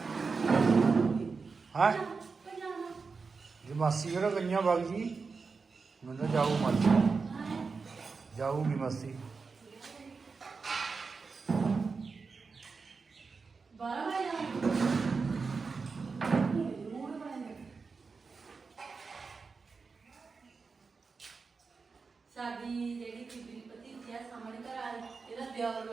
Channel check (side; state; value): left; quieter; 4.7 dB